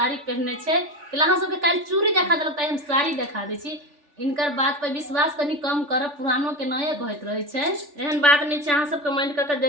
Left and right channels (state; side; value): late; left; 3.4 ms